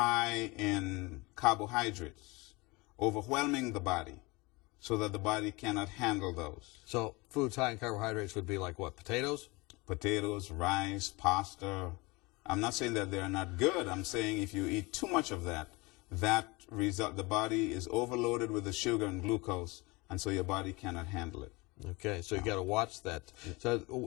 in carbohydrates, overwhelming the body so that the body cannot handle those. So foods high in carbohydrates would be like what, potatoes? Potatoes, rice, pasta. I'm not saying that they're not good. I'm saying if you eat too much of that, the body is overloaded with the sugar and glucose, and so your body cannot handle it. Okay, so you got to watch that. So,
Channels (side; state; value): right; quieter; 24.7 dB